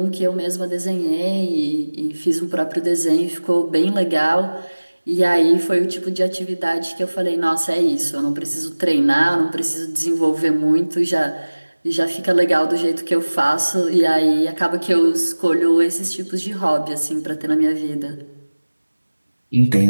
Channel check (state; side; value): inverted; both; correlation -1.00